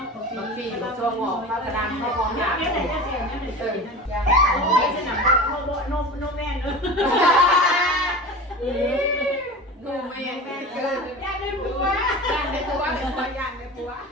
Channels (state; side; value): normal; both; correlation 0.32